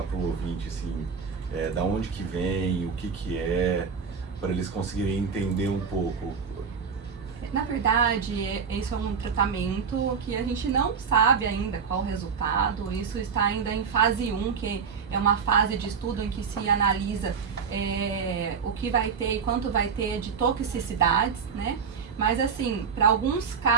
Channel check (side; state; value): left; quieter; 6.1 dB